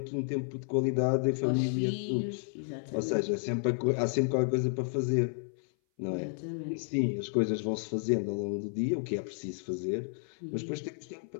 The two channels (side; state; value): right; silent; 57 dB below the other